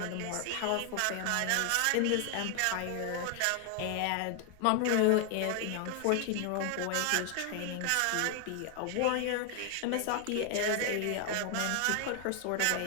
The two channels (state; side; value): different; both; correlation 0.00